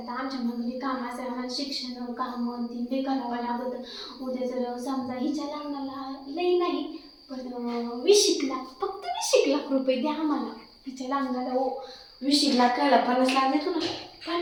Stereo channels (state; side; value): identical; both; correlation 1.00